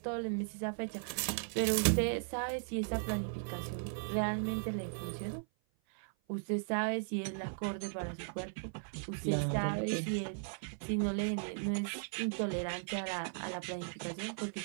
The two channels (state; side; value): silent; left; 53 dB below the other